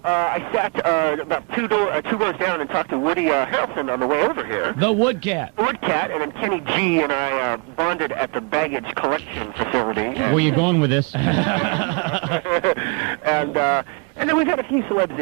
I sat about two rows down and talked to Woody Harrelson on the way over here. The Woodcat. Woodcat, and then Kenny G and I bonded at the baggage collection facility. Where are you going with this? And then we've had a few celebs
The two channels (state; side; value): quieter; left; 33.0 dB